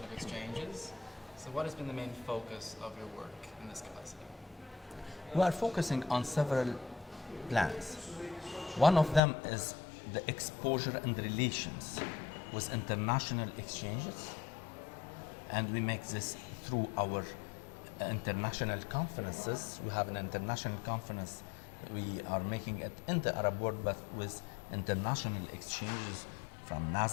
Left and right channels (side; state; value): right; drops out; at 9.2 s